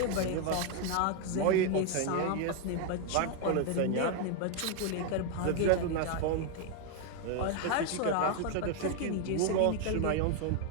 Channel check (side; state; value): both; different; correlation 0.01